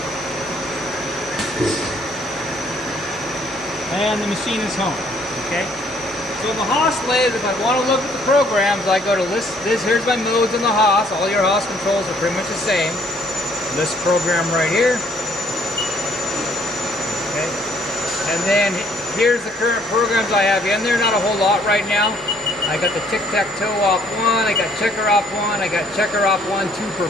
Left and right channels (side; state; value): both; normal; correlation 0.63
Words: And the machine is home. Okay. So the Haas lathe, if I want to look at the programs, I go to list this. Here's my modes in the Haas. All your Haas controls are pretty much the same. List program right here. Okay. And then here's the current programs I have in there. Not a whole lot right now. I got the tic-tac-toe off 1. I got checker off 1. I got checker off 1, 2 per